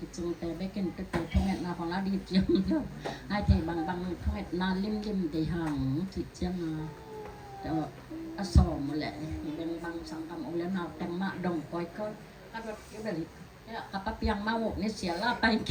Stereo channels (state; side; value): identical; both; correlation 1.00